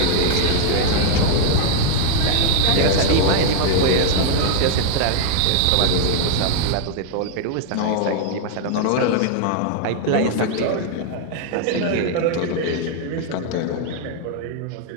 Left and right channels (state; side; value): different; both; correlation 0.00